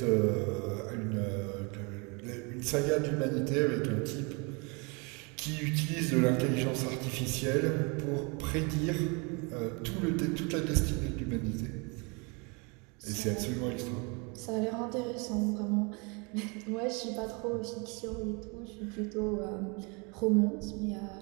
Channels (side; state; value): left; quieter; 31.3 dB